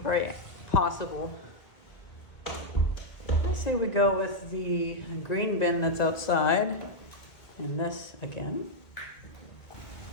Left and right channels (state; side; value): late; right; 1.8 ms